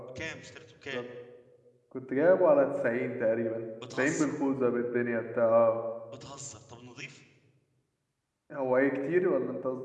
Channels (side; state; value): both; identical; correlation 1.00